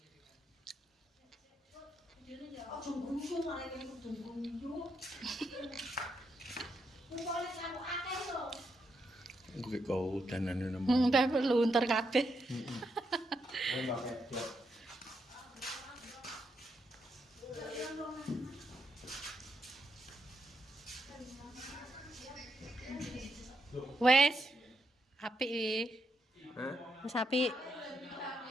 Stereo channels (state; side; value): normal; both; correlation 0.81